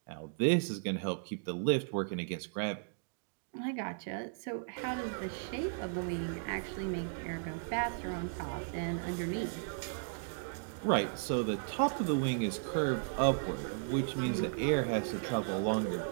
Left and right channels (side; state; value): left; silent; digital silence